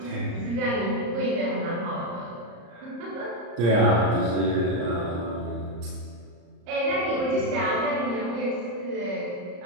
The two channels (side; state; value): left; late; 34 ms